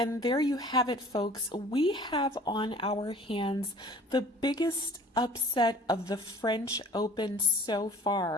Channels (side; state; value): both; normal; correlation 0.48